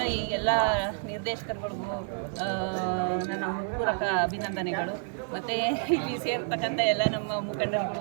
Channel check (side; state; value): left; silent; 59 dB below the other